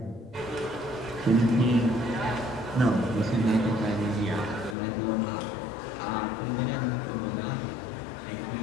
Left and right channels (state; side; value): drops out; right; at 4.8 s